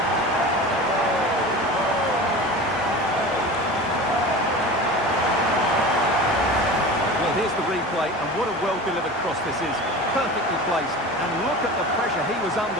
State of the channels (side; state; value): both; normal; correlation 0.34